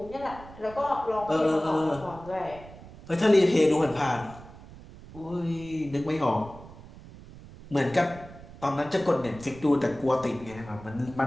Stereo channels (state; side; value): noise; right; rumble, 18 dB below the sound